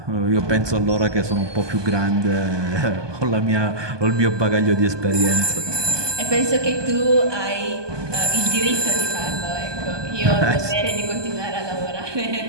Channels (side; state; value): left; late; 1.2 ms